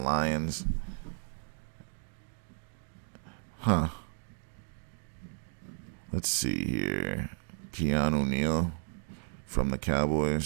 Huh. Let's see here. Keanu Neal from the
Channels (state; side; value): silent; left; 56 dB below the other